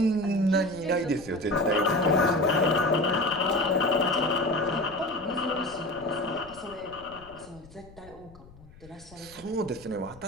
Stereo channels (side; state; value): left; noise; rumble, 22 dB below the sound